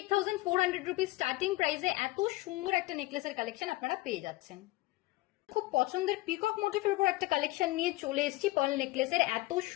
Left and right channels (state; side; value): quieter; right; 19.8 dB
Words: রুপিস স্টার্টিং প্রাইসে এত সুন্দর একটা নেকলেসের কালেকশন আপনারা পেয়ে যাচ্ছেন। খুব পছন্দের পিকক মোটিভের উপর একটা কালেকশন নিয়ে চলে এসেছি পার্ল নেকলেসের। এত